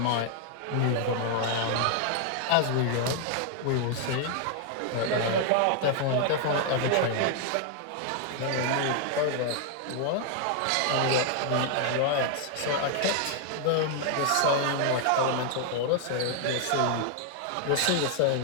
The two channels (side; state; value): both; different; correlation 0.00